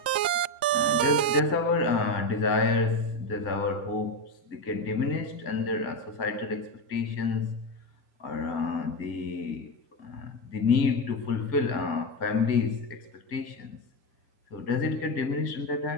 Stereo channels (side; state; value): right; late; 1.9 ms